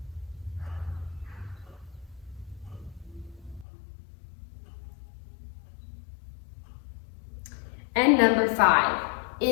And number 5,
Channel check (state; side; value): drops out; right; at 3.7 s